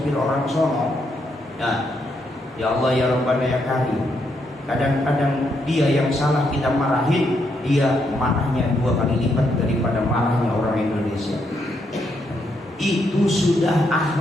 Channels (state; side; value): normal; both; correlation 0.77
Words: orang sono, ya Allah ya Rabbana ya Karim. Kadang-kadang dia yang salah kita marahin, dia marahnya 2 kali lipat daripada marahnya orang Indonesia. Itu sudah